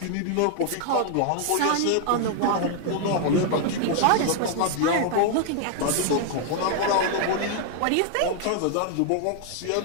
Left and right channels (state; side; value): different; both; correlation 0.00